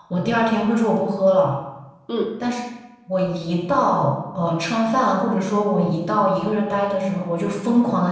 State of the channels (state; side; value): identical; both; correlation 1.00